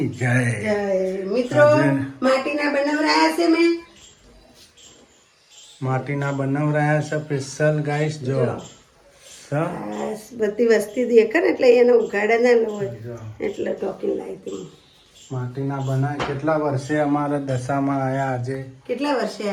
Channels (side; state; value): both; identical; correlation 1.00